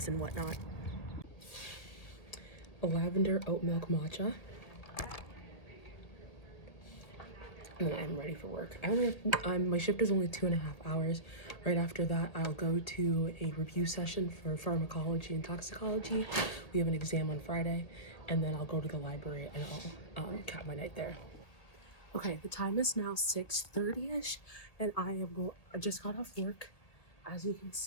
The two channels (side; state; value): right; late; 1.7 ms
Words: and whatnot. A lavender oat milk matcha. And then I'm ready for work. I only have, my shift is only 2.5 hours. Right after that, I'll go to a review session for pharmacology and toxicology. We have an exam on Friday, and then I'll go to the library and I'll cap my night there. Okay, the time is now 6:30ish, and I just got off work. As you can